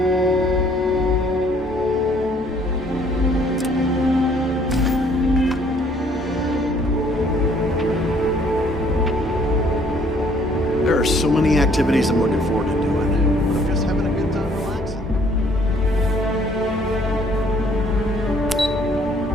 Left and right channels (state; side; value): normal; both; correlation 0.61